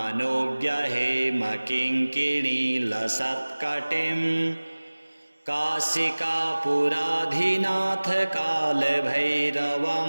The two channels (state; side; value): inverted; both; correlation -1.00